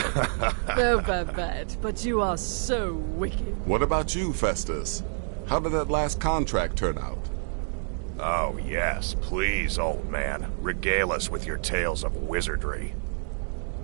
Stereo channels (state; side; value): silent; left; 58 dB below the other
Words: Oh, Babette, but you are so wicked. What about you, Festus? How did that last contract turn out? Oh, yes, please, old man. Regale us with your tales of wizardry.